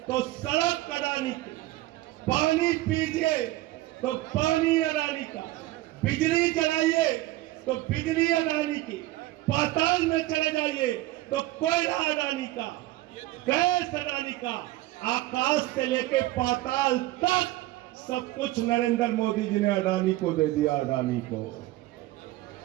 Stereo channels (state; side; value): quieter; left; 17.3 dB